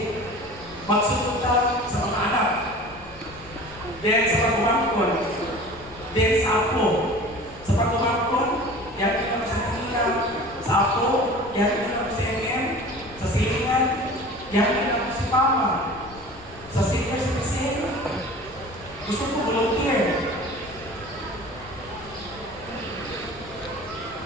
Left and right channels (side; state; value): left; noise; rumble, 19 dB below the sound